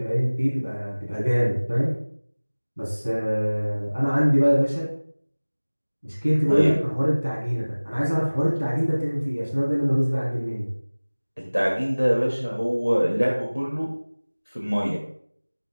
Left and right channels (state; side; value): inverted; both; correlation -1.00